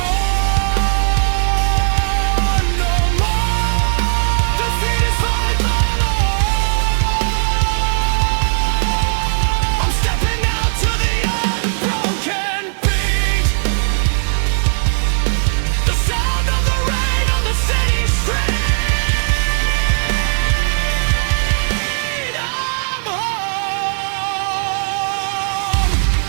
no more. Defeat is finally I'm stepping out to the unbroken beat, the sound of the rain on the city street. I'm home.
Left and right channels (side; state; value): left; silent; 56 dB below the other